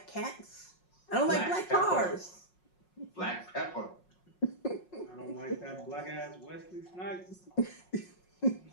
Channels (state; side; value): late; right; 5.5 ms